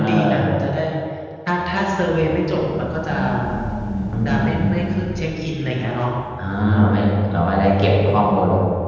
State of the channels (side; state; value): both; identical; correlation 1.00